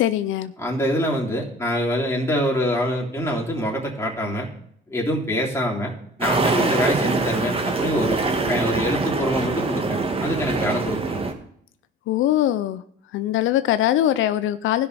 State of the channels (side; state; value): both; normal; correlation 0.39